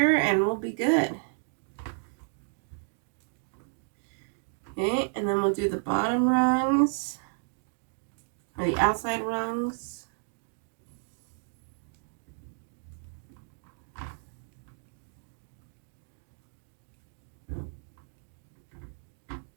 and we'll be good. Okay, and then we'll do the bottom rungs, or the outside rungs.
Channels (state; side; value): silent; left; digital silence